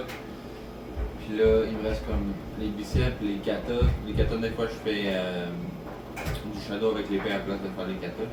Puis là, il me reste comme les biceps, les katas. Les katas, des fois, je fais du shadow avec l'épée à la place de faire les katas.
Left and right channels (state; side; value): identical; both; correlation 1.00